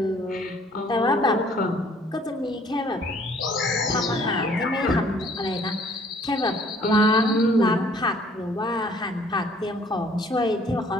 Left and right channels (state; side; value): normal; both; correlation 0.58